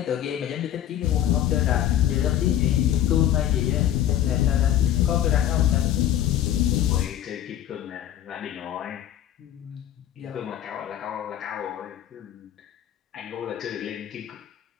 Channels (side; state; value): right; quieter; 11.4 dB